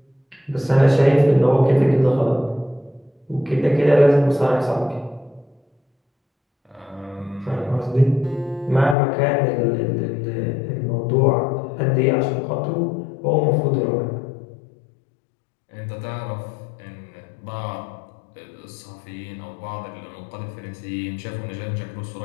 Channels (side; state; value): right; drops out; at 9.0 s